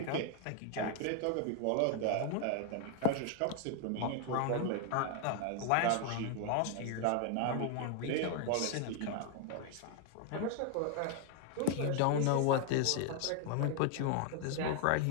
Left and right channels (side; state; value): both; different; correlation 0.00